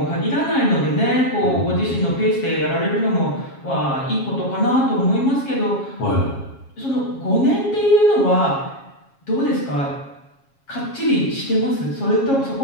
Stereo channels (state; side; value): late; right; 7.3 ms